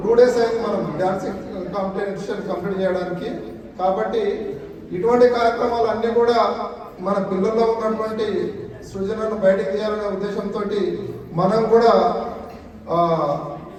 2 days అయింది మనం డ్యాన్సింగ్ కాంపిటీషన్ కంప్లీట్ చేయడానికి. కాబట్టి ఇటువంటి కార్యక్రమాలు అన్నీ కూడా మన పిల్లల్లో ఉన్నటువంటి సృజనను బయటకు తీయాలనే ఉద్దేశంతో మనం కూడా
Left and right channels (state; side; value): identical; both; correlation 1.00